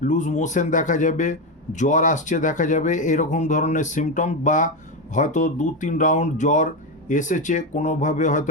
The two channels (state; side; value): normal; both; correlation 0.12